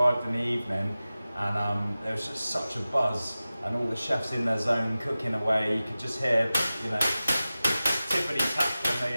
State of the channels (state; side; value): inverted; both; correlation -0.96